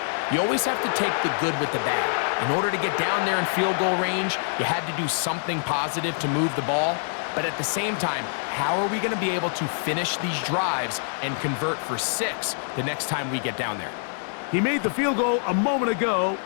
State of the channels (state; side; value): silent; right; digital silence